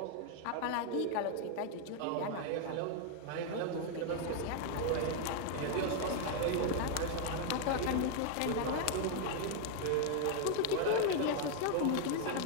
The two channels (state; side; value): different; both; correlation 0.00